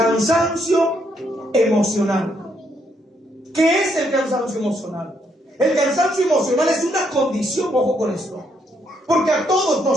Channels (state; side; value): normal; both; correlation 0.74